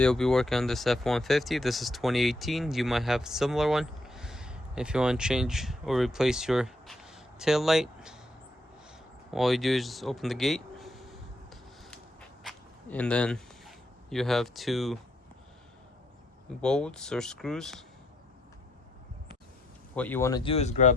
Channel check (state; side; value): normal; both; correlation 0.74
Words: we'll be working on this F150. This is 2018. You might have a similar one. If you want to change or replace your tail light, all you do is just open the gate, and then you have two bolts or screws. What you want to do is